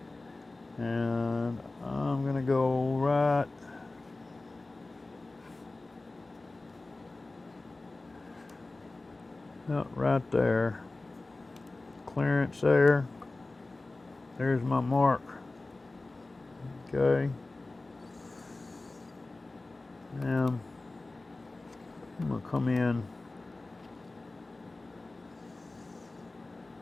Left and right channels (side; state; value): right; quieter; 3.1 dB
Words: And I'm going to go right right there. Clearance there. There's my mark. Okay. Now I'm going to come in